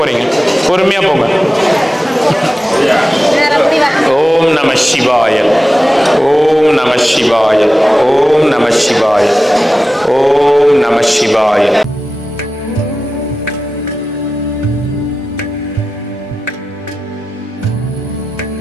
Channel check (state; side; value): normal; both; correlation 0.94